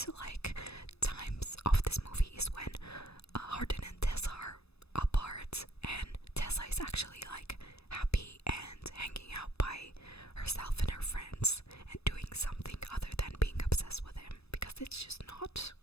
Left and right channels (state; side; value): late; right; 0.79 ms